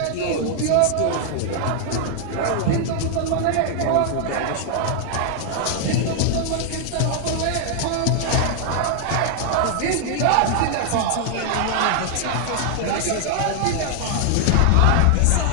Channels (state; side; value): different; both; correlation 0.00